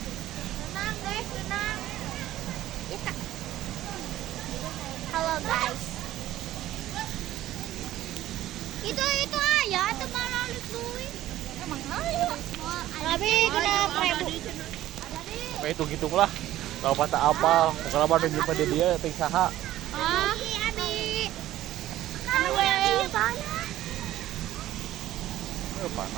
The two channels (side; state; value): left; quieter; 14.1 dB